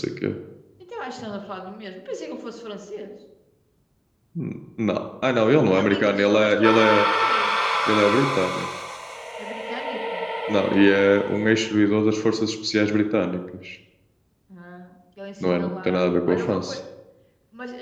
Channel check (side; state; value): both; identical; correlation 1.00